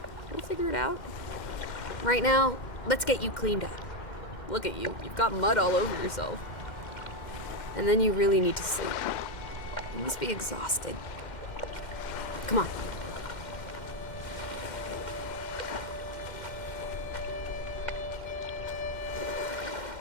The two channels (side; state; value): right; late; 2.1 ms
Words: We'll figure it out. Right now, let's get you cleaned up. Look at you. You've got mud all over yourself. And then you really need to sleep. You must be exhausted. Come on.